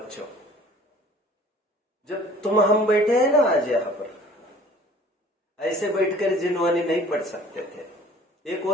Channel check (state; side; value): normal; both; correlation 0.51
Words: जब हम बैठे हैं ना आज यहां पर, ऐसे बैठकर जिनवानी नहीं पढ़ सकते थे। एक